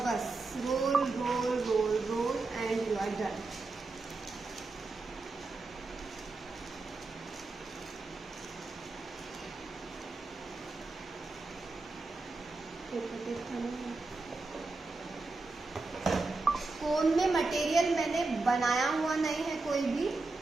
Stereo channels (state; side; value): quieter; left; 3.5 dB